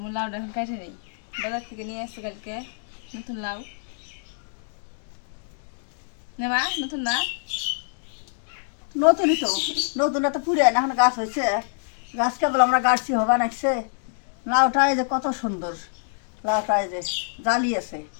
লাউটা এখন কেটে নেই, বাজার থেকে নিয়ে আসছি কালকে নতুন লাউ। নেবা নতুন না? নতুনই তো, নতুন তো পুরে না, এখন গাছ হয়েছে। গাছ কেবল আমরা গাছছি হবা নাকছে। লাউটা এই যে কত সুন্দর, লাউটা এই যে জালি আছে,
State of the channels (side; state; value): right; silent; digital silence